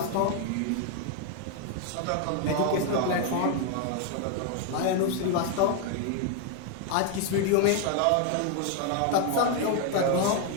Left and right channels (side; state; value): both; different; correlation 0.00